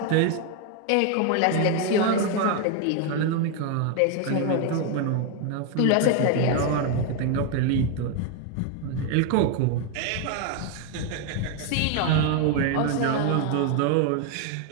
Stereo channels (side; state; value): both; different; correlation 0.01